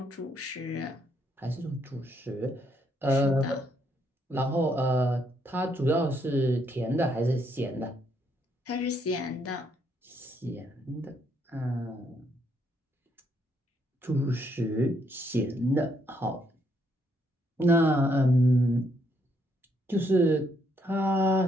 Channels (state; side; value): normal; both; correlation 0.73